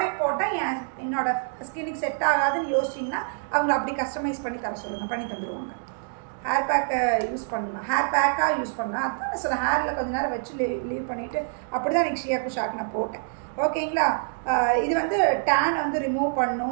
போட்டால் என்னோட ஸ்கின்னுக்கு செட் ஆகாதுன்னு யோசிச்சிங்கன்னா அவங்கள அப்படி கஸ்டமைஸ் பண்ணி தர சொல்லுங்கள், பண்ணி தந்துடுவாங்க. ஹேர் பேக்கை யூஸ் பண்ணணும், ஹேர் பேக்காக யூஸ் பண்ணலாம். அதுதான் சொல்ல ஹேரில் கொஞ்சம் நேரம் வச்சு லீவ் பண்ணிவிட்டு அப்படி தான் எனக்கு ஷியாக்கு ஷாக் நான் போட்டேன். ஓகேங்களா. இது வந்து டேன் வந்து ரிமூவ்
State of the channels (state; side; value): silent; left; digital silence